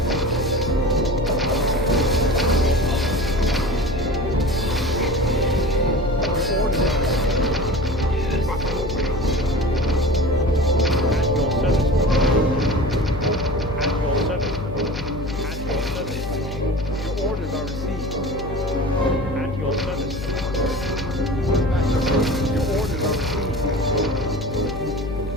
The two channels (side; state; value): left; noise; hum, 8 dB below the sound